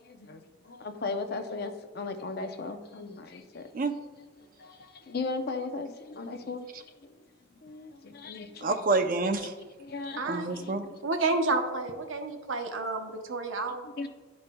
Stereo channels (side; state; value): both; normal; correlation 0.02